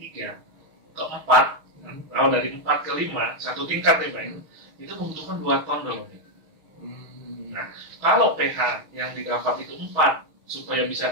ke 4, kalau dari 4 ke 5, satu tingkat ya Pak, itu membutuhkan 2 ton dolomit. Nah, kalau pH yang didapat itu 4, supaya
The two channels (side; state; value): left; late; 6.4 ms